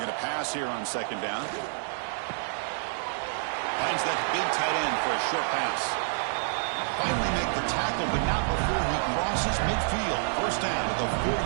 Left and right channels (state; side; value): silent; left; digital silence